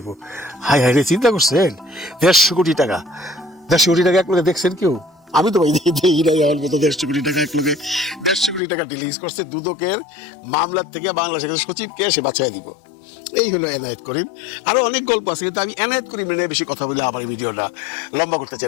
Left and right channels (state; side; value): drops out; right; at 8.6 s